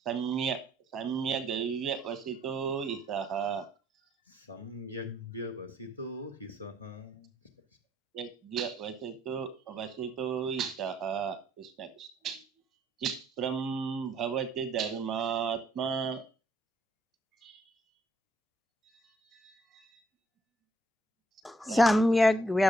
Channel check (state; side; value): normal; both; correlation 0.69